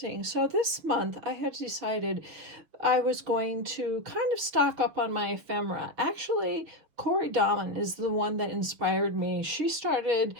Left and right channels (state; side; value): late; left; 6.3 ms